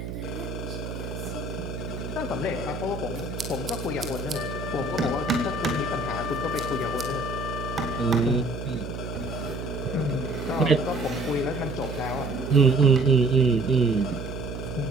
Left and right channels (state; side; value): noise; right; hum, 7 dB below the sound